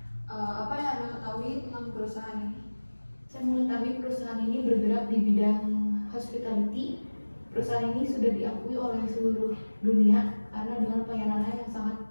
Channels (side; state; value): both; inverted; correlation -1.00